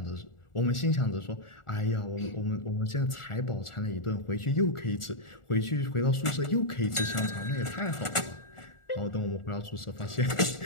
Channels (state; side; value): late; right; 1.4 ms